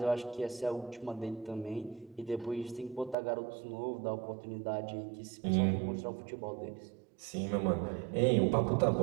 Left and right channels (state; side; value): drops out; left; at 3.2 s